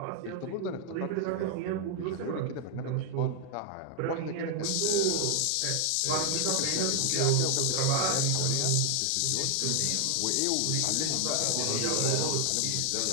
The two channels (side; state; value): both; different; correlation 0.00